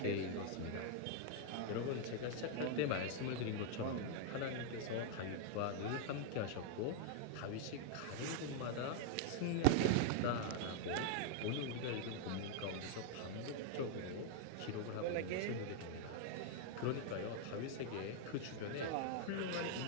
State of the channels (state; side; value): different; both; correlation 0.00